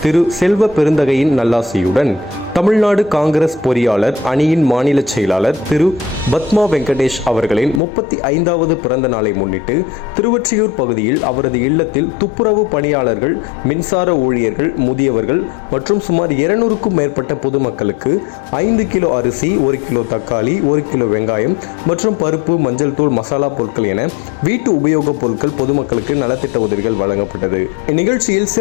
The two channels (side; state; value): right; drops out; at 7.8 s